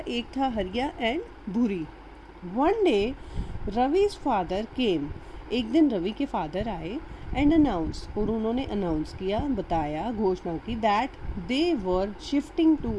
था Hariya and Bhuri. One day Ravi's father came. एक दिन रवि के फादर आए एंड अनाउंस, और उन्होंने अनाउंस किया, बताया, घोषणा की that they were shifting to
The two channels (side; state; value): both; identical; correlation 1.00